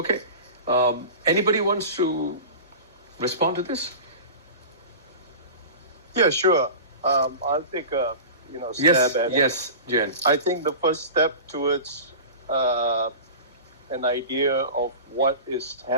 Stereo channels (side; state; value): both; inverted; correlation -0.34